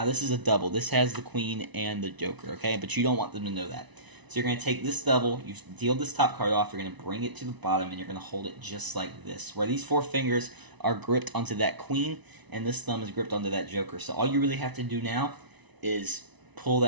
this is a double. This has the queen and the joker, okay? But you don't want them to know that. So you're going to take this double, you deal this top card off, you're going to bring it to the bottom, and you're going to hold it just like this, where these four fingers are gripped onto that queen, and this thumb is gripped onto that joker. So all you really have to do now is pull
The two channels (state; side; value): late; left; 1.0 ms